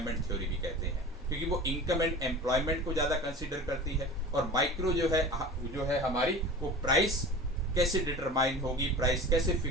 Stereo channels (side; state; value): both; normal; correlation 0.36